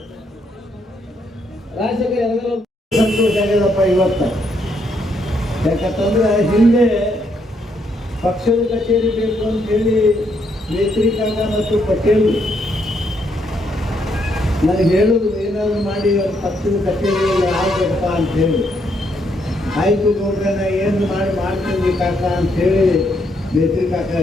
ರಾಜಶೇಖರ್ ಎರಗಲ ಸಂತೋಷ ಆಗ್ಯದಪ್ಪ ಇವತ್ತ. ಯಾಕಂತಂದ್ರೆ ಹಿಂದೆ ಪಕ್ಷದ ಕಚೇರಿ ಬೇಕು ಅಂತ ಹೇಳಿ ಮೇತ್ರಿ ಕಾಕ ಮತ್ತು ಪಟೇಲ್ ನನಗೆ ಹೇಳುದು ಏನಾದ್ರು ಮಾಡಿ ಅವ್ರ ಪಕ್ಷದ ಕಚೇರಿಯಲ್ಲಿ ಆಗಬೇಕಪ್ಪ ಅಂತ ಹೇಳಿ. ಆಯ್ತು ನೋಡ್ರೆ ನಾ ಏನು ಮಾಡ್ತೀನಿ ಕಾಕ ಅಂತ ಹೇಳಿ ಮೇತ್ರಿ ಕಾಕ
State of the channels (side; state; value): both; normal; correlation 0.75